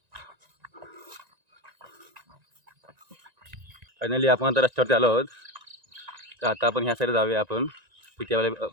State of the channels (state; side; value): late; left; 1.9 ms